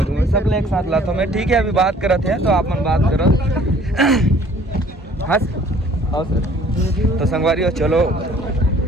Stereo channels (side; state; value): both; normal; correlation 0.55